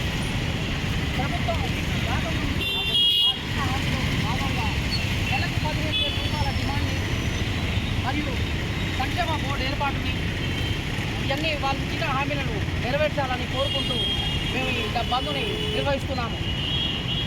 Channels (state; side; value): identical; both; correlation 1.00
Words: ప్రభుత్వం రాకముందు వారిచ్చిన హామీలో భాగంగా నెలకు 15,000 రూపాయల డిమాండ్ని మరియు సంక్షేమ బోర్డు ఏర్పాటుని ఇవన్నీ వాళ్ళు ఇచ్చిన హామీలను నెరవేర్చాలని కోరుకుంటూ మేము ఈ బంద్ని నిర్వహిస్తున్నాము.